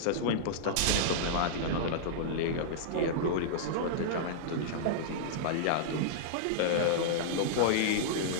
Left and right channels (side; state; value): both; different; correlation -0.02